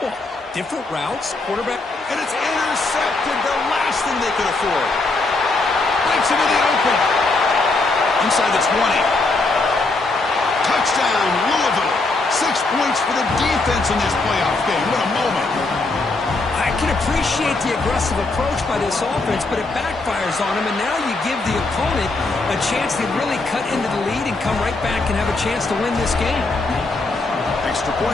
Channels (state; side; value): quieter; right; 3.4 dB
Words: Different routes, quarterback. And it's intercepted, the last thing they could afford. Breaks into the open. Inside the 20. Touchdown, Louisville. 6 points for the defense in this playoff game. What a moment. I can appreciate the aggressive approach by this offense, but it backfires on them, and now you give the opponent a chance to really cut into the lead and come right back and have a chance to win this game. Extra